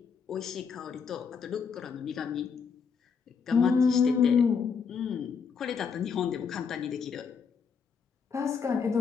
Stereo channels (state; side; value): quieter; right; 6.1 dB